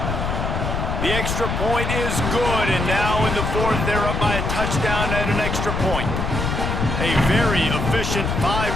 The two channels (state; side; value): noise; left; rumble, 1 dB below the sound